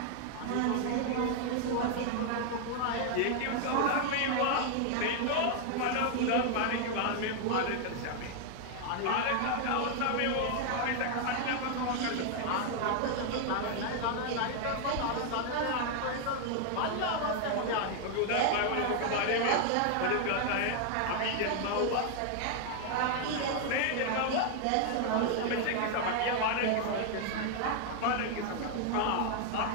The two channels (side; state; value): both; different; correlation 0.00